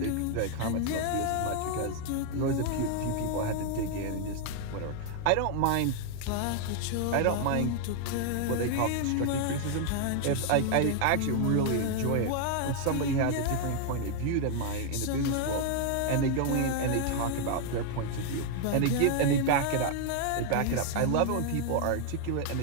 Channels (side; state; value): both; different; correlation 0.00